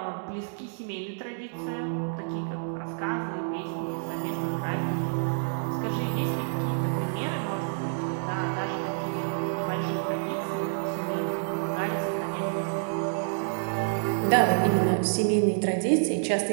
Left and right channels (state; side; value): silent; left; digital silence